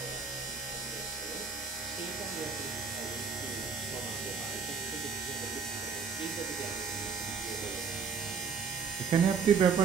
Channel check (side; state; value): left; quieter; 5.8 dB